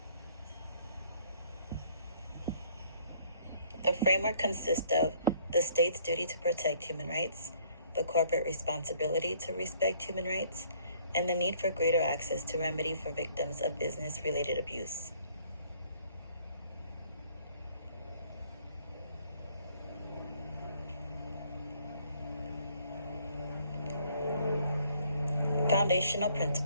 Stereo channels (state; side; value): inverted; both; correlation -0.62